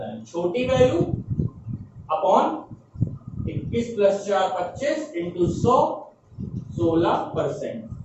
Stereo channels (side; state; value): both; identical; correlation 1.00